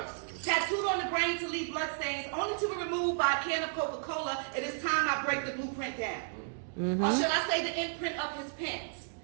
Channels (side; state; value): left; silent; digital silence